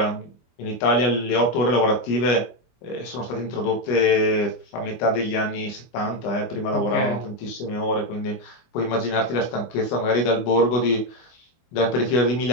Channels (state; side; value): late; right; 25 ms